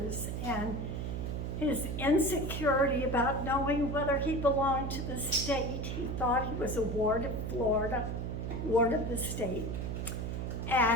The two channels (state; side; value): noise; right; hum, 3 dB below the sound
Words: and his insecurity about knowing whether he belonged to the state. He thought he was a ward of Florida, ward of the state.